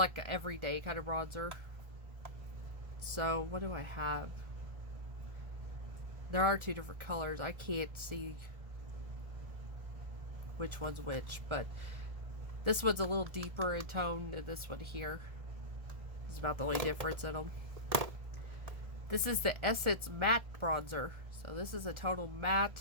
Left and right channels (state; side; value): late; left; 1.7 ms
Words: an everyday kind of bronzer. So what do I have? There are 2 different colors. I can't see which one's which, but this one's a little deeper in tone than this one here. It's about the only difference in them. This is the Essence Matte Bronzer. So this is a total